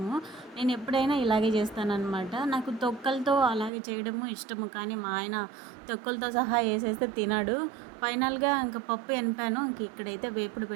నేను ఎప్పుడైనా ఇలాగే చేస్తానన్నమాట. నాకు తొక్కలతో అలాగే చేయడము ఇష్టము, కానీ మా ఆయన తొక్కలతో సహా వేసేస్తే తినడు. ఫైనల్గా ఇంకా పప్పు ఎనిపాను. ఇంక ఇక్కడైతే వేపుడు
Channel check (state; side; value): drops out; left; at 3.7 s